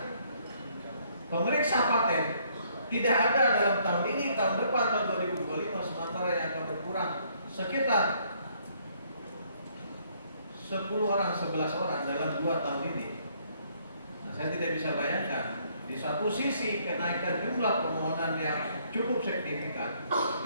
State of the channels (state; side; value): inverted; both; correlation -0.66